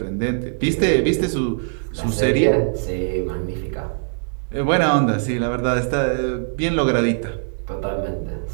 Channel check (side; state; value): left; silent; digital silence